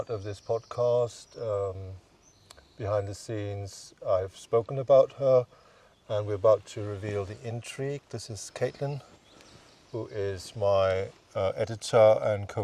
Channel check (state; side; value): identical; both; correlation 1.00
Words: of this podcast. Behind the scenes, I've spoken about her, and we're about to reveal the intrigue. This is Caitlin, who is my editor and